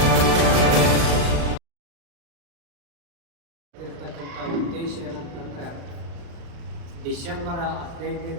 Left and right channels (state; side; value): late; left; 35 ms